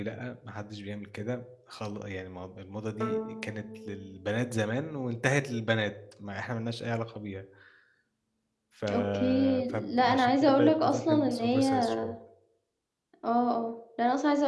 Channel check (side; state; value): both; identical; correlation 1.00